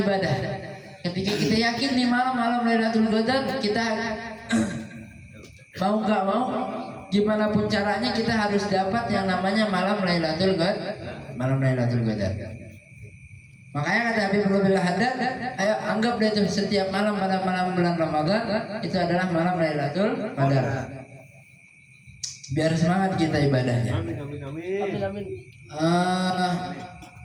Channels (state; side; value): identical; both; correlation 1.00